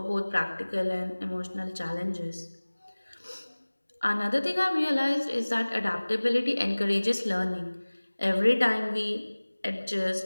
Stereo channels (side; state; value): both; inverted; correlation -1.00